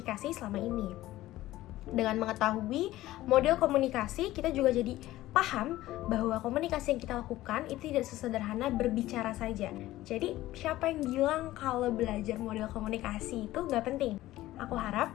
selama ini. Dengan mengetahui model komunikasi, kita juga jadi paham bahwa komunikasi yang kita lakukan itu tidak sesederhana berbicara saja. Jadi, siapa yang bilang kalau belajar model komunikasi itu nggak penting? Aku harap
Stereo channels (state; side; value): quieter; right; 15.9 dB